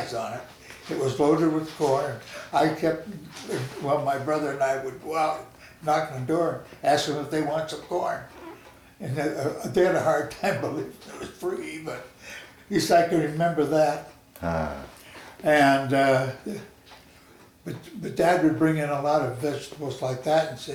on it. It was loaded with corn. I kept, well, my brother and I would go out, knock on the door, ask them if they want some corn. And they had a hard time believing it was free, but at least I can remember that. And but Dad would bring in a lot of vegetables like that and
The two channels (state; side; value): identical; both; correlation 1.00